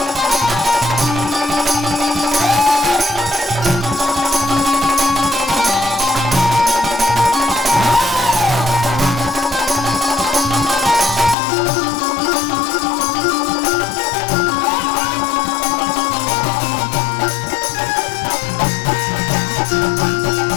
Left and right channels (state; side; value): drops out; right; at 11.4 s